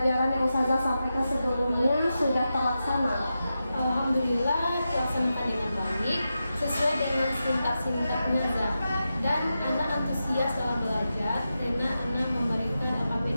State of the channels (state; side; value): inverted; both; correlation -0.90